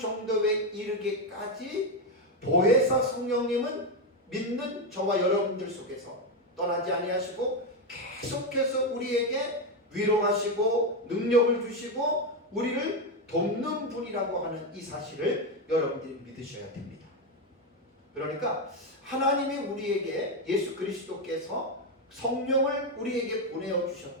이르기까지 보혜사 성령님은 믿는 저와 여러분들 속에서 떠나지 아니하시고 계속해서 우리에게 위로하시고 능력을 주시고 우리를 돕는 분이라고 하는 이 사실을 여러분들이 믿으셔야 됩니다. 그러니까 하나님이 우리에게 예수 그리스도께서 성령을 우리에게 보내어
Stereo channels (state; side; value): normal; both; correlation 0.08